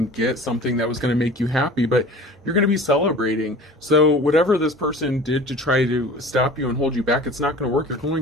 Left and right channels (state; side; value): normal; both; correlation 0.42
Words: get something that was going to make you happy, but you're going to be celebrating. So whatever this person did to try to stop you and hold you back, it's not going to work. You're